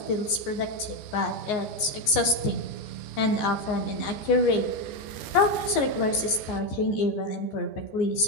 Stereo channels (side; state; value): right; late; 14 ms